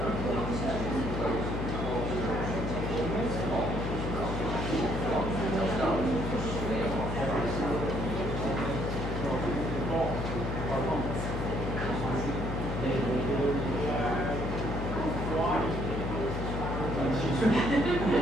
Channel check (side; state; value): left; noise; hum, 3 dB below the sound